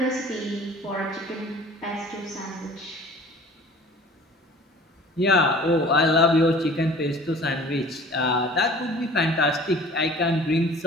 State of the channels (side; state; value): both; normal; correlation 0.46